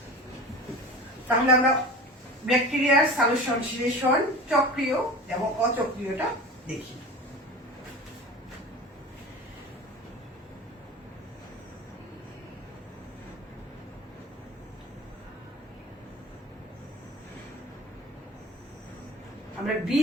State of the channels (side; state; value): both; normal; correlation 0.34